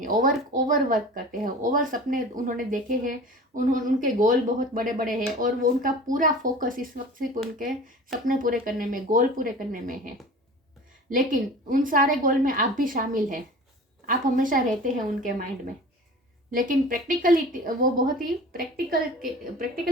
ओवर वर्क करते हैं, ओवर सपने उन्होंने देखे हैं, उनके गोल बहुत बड़े बड़े हैं, और वो उनका पूरा फोकस इस वक्त सिर्फ उनके सपने पूरे करने में, गोल पूरे करने में है। लेकिन उन सारे गोल में आप भी शामिल हैं, आप हमेशा रहते हैं उनके माइंड में। लेकिन प्रैक्टिकलिटी, वो बहुत ही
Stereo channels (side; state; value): both; normal; correlation 0.40